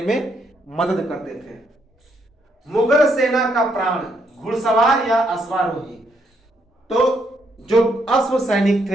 में मदद करते थे। मुगल सेना का प्राण, घुड़सवार या अश्वारोही। तो जो अश्व सैनिक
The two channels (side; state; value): both; normal; correlation 0.75